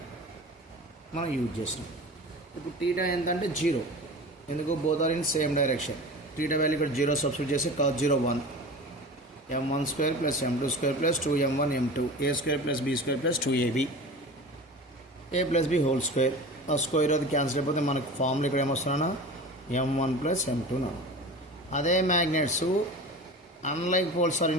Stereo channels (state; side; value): normal; both; correlation 0.35